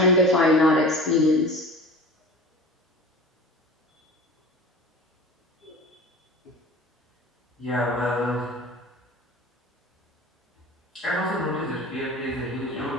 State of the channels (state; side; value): normal; both; correlation 0.38